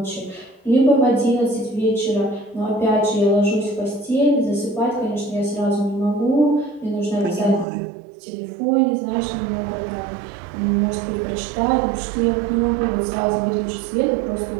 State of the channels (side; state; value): left; drops out; at 7.7 s